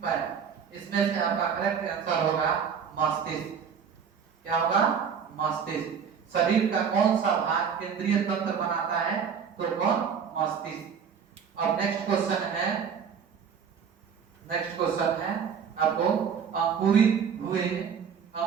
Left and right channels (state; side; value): quieter; left; 7.0 dB